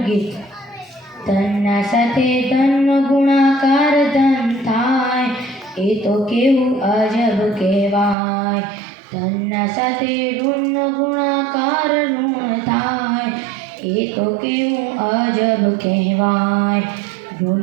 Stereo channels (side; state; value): left; drops out; at 8.2 s